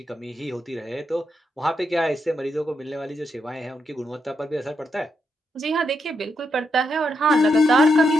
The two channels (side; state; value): both; normal; correlation 0.82